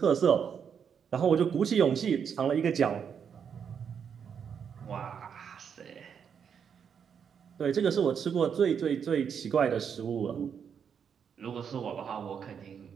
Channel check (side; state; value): left; quieter; 7.3 dB